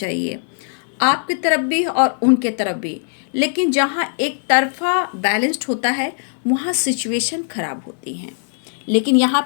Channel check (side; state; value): right; silent; digital silence